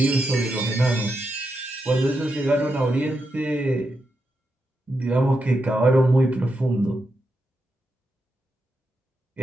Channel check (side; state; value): both; normal; correlation 0.85